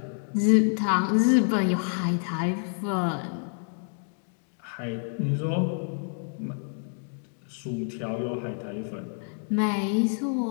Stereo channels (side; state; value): right; silent; 59 dB below the other